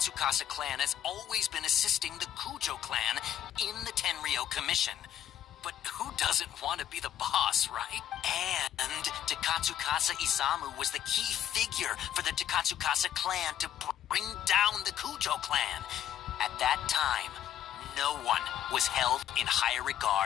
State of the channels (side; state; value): right; quieter; 10.9 dB